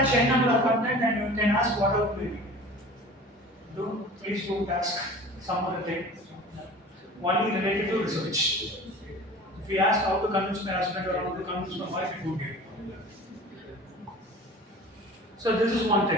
any number of content and you can ask whatever query. Please don't ask some other thing. Only related to research. If you ask how to convince my husband or how to convince my wife, it won't give. So this is one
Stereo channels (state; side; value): normal; both; correlation 0.41